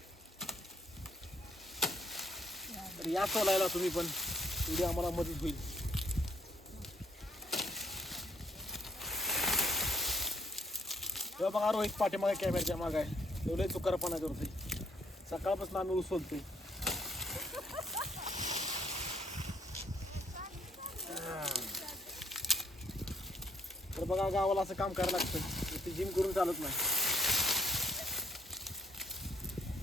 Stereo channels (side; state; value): both; normal; correlation 0.65